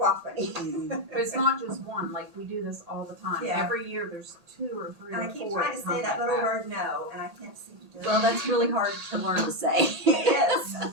funny. But it's not just one. Like we do this all the time. Yeah. Every year there's 2 or 3 And or I keep 4 trying to say that little word no, and I can't seem to do it. well, that's really hard to learn to say. It is. And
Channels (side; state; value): left; late; 1.8 ms